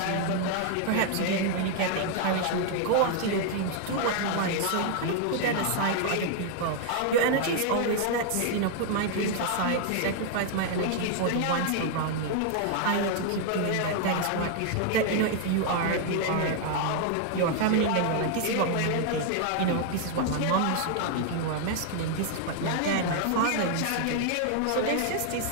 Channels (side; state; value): both; different; correlation 0.00